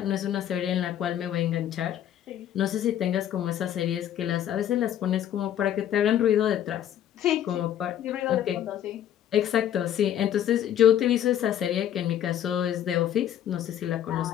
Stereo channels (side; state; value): right; quieter; 10.6 dB